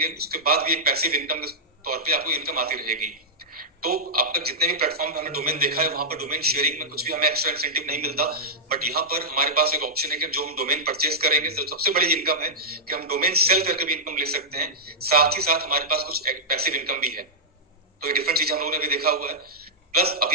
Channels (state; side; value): normal; both; correlation -0.11